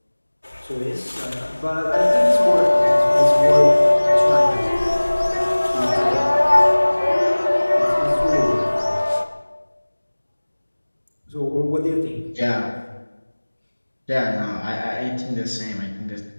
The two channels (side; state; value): both; inverted; correlation -1.00